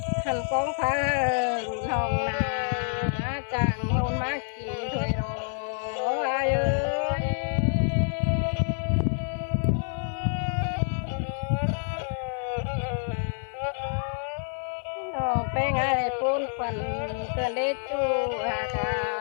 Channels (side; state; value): right; silent; digital silence